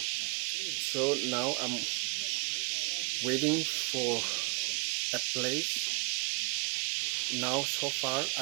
now I'm waiting for a place. Now so far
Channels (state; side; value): quieter; left; 28.6 dB